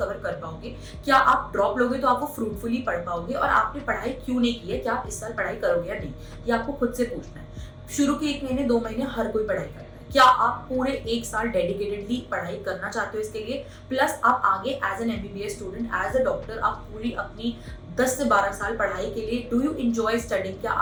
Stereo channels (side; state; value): both; identical; correlation 1.00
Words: कर पाओगे, क्या आप ड्रॉप लोगे तो आप वो फ्रूटफुली पढ़ पाओगे, और आपने पढ़ाई क्यों नहीं की है, क्या आप इस साल पढ़ाई करोगे या नहीं, ये आपको खुद से पूछना है. शुरू के 1 महीने 2 महीने हर कोई पढ़ाई करता है। क्या आप पूरे 1 साल डेडिकेटेडली पढ़ाई करना चाहते हो इसके लिए, प्लस आप आगे as an MBBS student, as a doctor आप पूरी अपनी 10 से 12 साल पढ़ाई के लिए, डू यू एंजॉय स्टडिंग, क्या